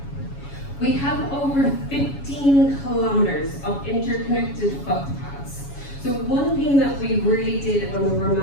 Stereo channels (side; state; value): right; late; 7.2 ms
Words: We have over 15 kilometers of interconnected footpaths. So one thing that we really did when we were